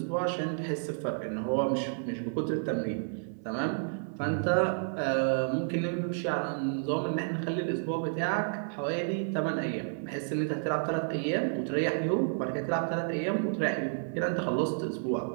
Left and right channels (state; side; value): silent; left; digital silence